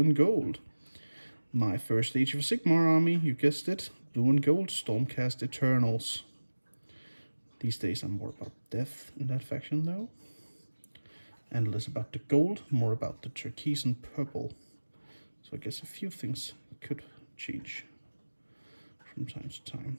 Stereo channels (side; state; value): both; inverted; correlation -1.00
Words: gold. My first Age of Sigmar army, you guessed it, blue and gold Stormcast Eternals. These days I'm more about death in that faction though, and less about the gold, more about the turquoise and purple. So I guess a few things could change from time to time.